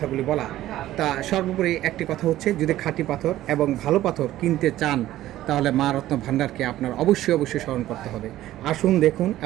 বলা। তা সর্বোপরি একটি কথা হচ্ছে, যদি খাঁটি পাথর এবং ভালো পাথর কিনতে চান, তাহলে মা রত্ন ভান্ডারকে আপনার অবশ্যই স্মরণ করতে হবে। আসুন, দেখুন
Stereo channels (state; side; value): quieter; left; 14.3 dB